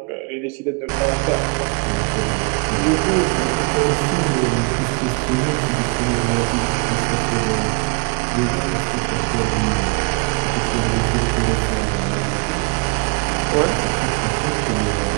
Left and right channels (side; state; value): left; quieter; 32.2 dB